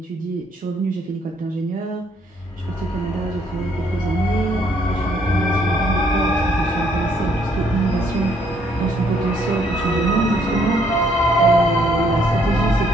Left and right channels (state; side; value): normal; both; correlation 0.67